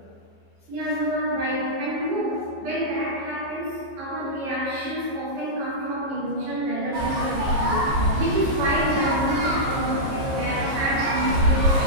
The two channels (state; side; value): late; left; 15 ms